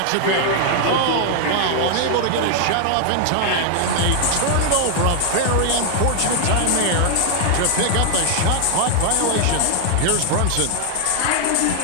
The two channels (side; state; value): both; different; correlation 0.00